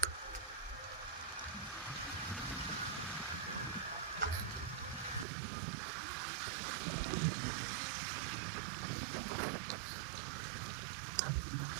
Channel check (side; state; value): left; drops out; at 5.2 s